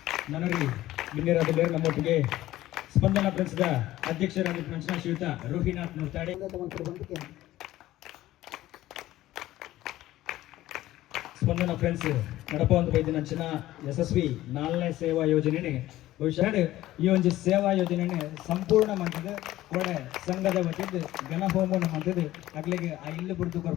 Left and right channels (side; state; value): right; quieter; 15.3 dB